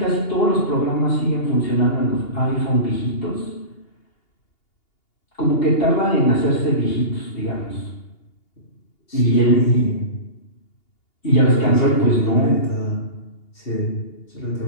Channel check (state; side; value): late; right; 2.8 ms